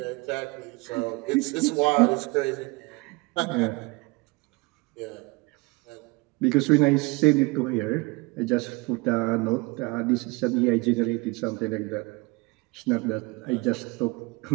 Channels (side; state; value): left; quieter; 25.3 dB